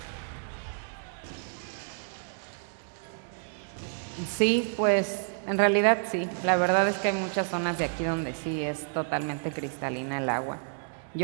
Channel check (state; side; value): silent; left; digital silence